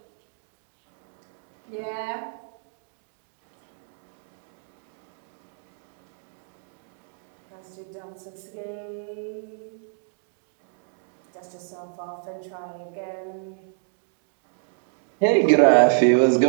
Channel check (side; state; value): left; silent; 60 dB below the other